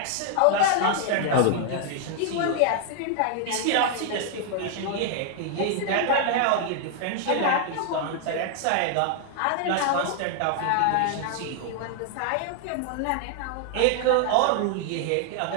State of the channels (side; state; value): both; different; correlation 0.00